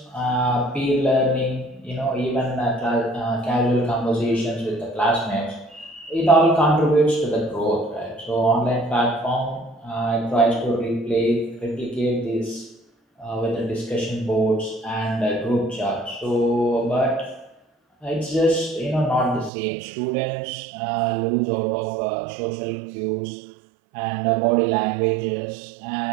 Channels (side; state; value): left; drops out; at 19.5 s